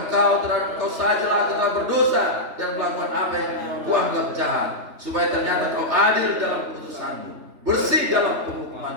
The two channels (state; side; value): late; left; 3.4 ms